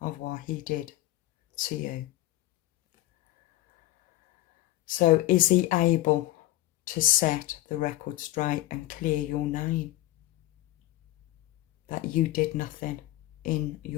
of what he did to you. So is he able to set the record straight and clear your name? That you did nothing in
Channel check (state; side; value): quieter; right; 16.6 dB